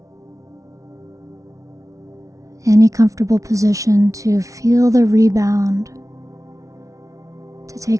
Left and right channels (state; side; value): late; left; 0.16 ms